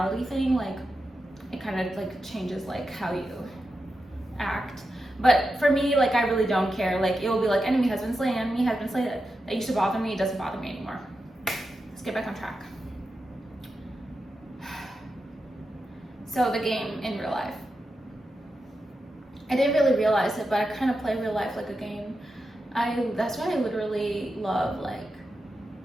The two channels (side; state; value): both; normal; correlation 0.89